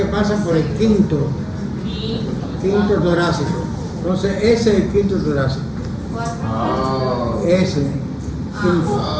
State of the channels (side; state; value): both; identical; correlation 1.00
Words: pasan por el quinto torácico. Entonces ese es el quinto torácico. Ese,